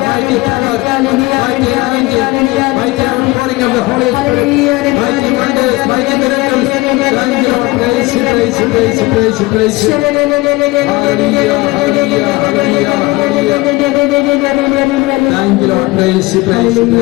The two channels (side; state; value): right; quieter; 21.6 dB